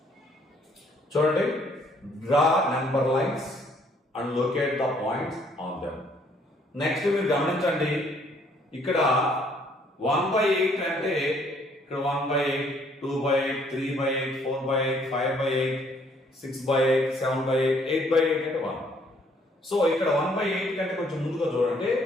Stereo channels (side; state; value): both; normal; correlation 0.64